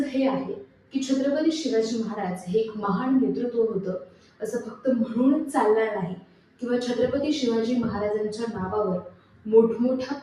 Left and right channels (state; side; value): identical; both; correlation 1.00